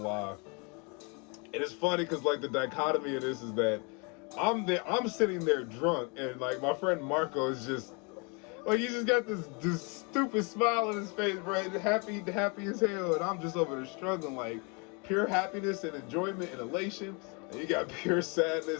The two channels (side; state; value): right; quieter; 32.7 dB